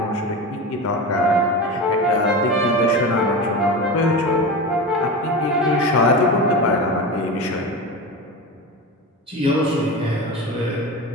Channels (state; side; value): normal; both; correlation 0.25